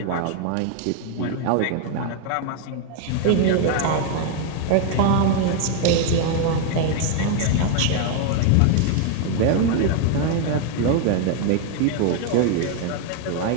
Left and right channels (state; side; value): different; both; correlation 0.01